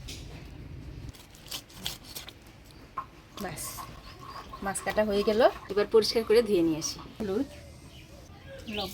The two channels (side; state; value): both; identical; correlation 1.00